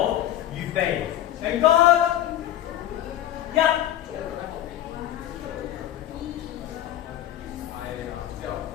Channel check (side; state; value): right; quieter; 12.4 dB